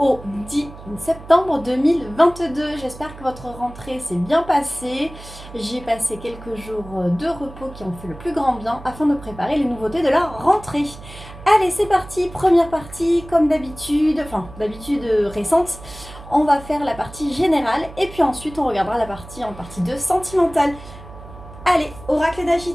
10 septembre 2022. J'espère que votre rentrée s'est bien passée. J'ai passé quelques jours de repos qui ont fait le plus grand bien afin de préparer les nouveautés de la rentrée. Allez, c'est parti, première partie, comme d'habitude, récente. On va faire la partie générale et puis ensuite on regardera la partie en partie 2 sentimentale. Allez, oracle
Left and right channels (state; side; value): noise; right; hum, 16 dB below the sound